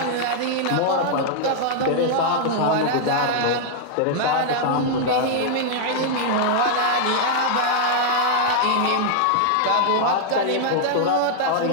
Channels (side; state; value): both; different; correlation -0.01